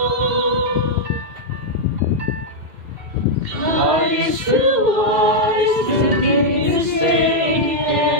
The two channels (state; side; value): late; left; 2.7 ms